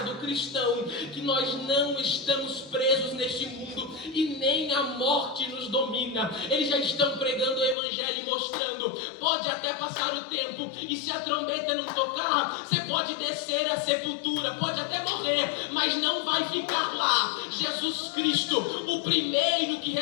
do cristão, que nós não estamos presos neste mundo e nem a morte nos domina. Eles já estão pregando o evangelho e mostrando, pode até passar o tempo, e se a trombeta não tocar, você pode descer à sepultura, pode até morrer, mas não vai ficar lá. Jesus Cristo, o primeiro que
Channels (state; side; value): drops out; right; at 7.8 s